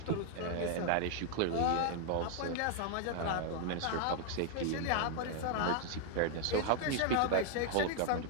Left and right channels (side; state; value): both; different; correlation 0.00